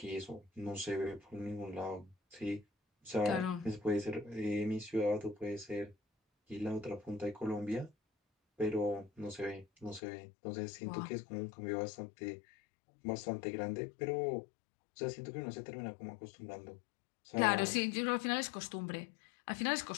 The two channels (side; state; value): right; drops out; at 10.0 s